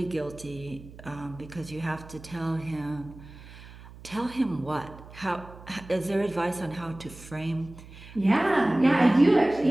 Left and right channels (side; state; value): right; noise; hum, 18 dB below the sound